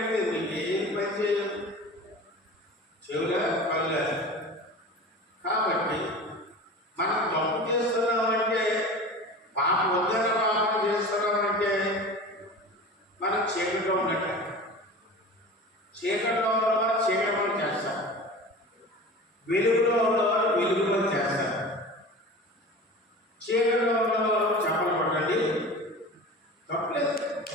మీకు ఏం పని చేయదు, చెవుల కళ్ళ. కాబట్టి మనం తప్పు చేస్తున్నామంటే పాపం వద్దన పాపం చేస్తున్నామంటే మనం చీకట్లో ఉన్నట్టు. చీకట్లో ఉన్నవారు చీకట్లో చేస్తారు, వెలుగులో ఉన్నవారు వెలుగులో చేస్తారు. చీకట్లో ఉన్నవారు చెప్పలు కొట్టండి, తప్పలేదు.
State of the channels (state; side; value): normal; both; correlation 0.35